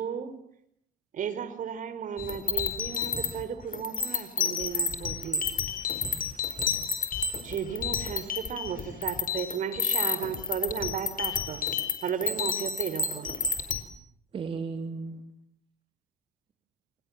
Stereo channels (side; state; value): both; normal; correlation -0.01